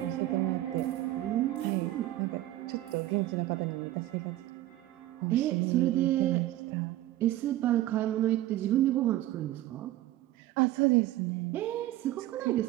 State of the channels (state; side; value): quieter; left; 15.1 dB